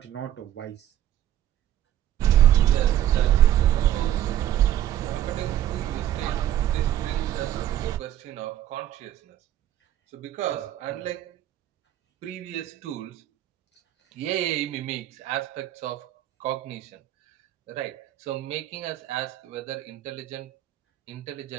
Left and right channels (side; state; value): left; quieter; 12.1 dB